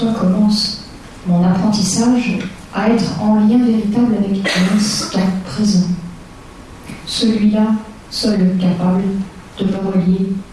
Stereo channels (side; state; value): both; identical; correlation 1.00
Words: commence mon apprentissage à être en lien véritable avec l'instant présent. Celui-là, seul capable de me relier